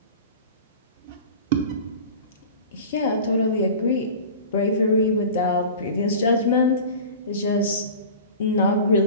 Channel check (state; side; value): inverted; both; correlation -0.37